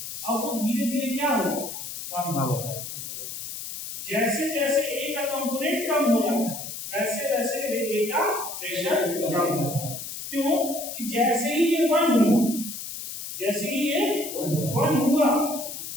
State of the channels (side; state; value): left; noise; hiss, 8 dB below the sound